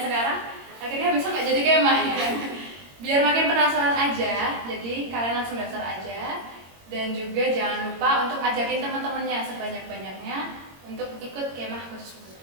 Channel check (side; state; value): left; late; 22 ms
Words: Akhirnya besok nggak jadi kemah ya. Biar makin penasaran aja, jadi kalian langsung daftar aja. Dan juga jangan lupa untuk ajakin teman-temannya sebanyak-banyaknya untuk ikut Kemah Khusus